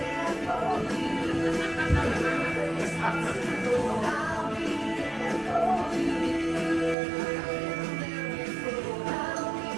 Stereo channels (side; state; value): left; drops out; at 7.0 s